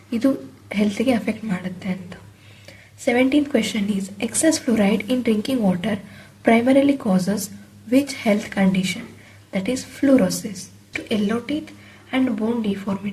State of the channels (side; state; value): both; identical; correlation 1.00